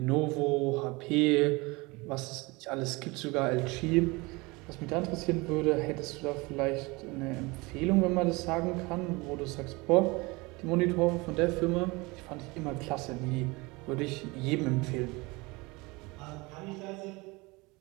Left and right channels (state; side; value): quieter; left; 24.6 dB